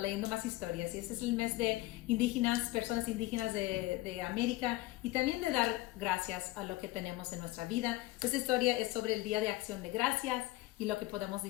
leyendo más historias. Y este es el mes de indígenas, personas indígenas de América, y también de dar gracias a lo que tenemos en nuestra vida. Esta historia es sobre el Día de Acción de Gracias y lo que podemos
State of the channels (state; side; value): quieter; right; 18.5 dB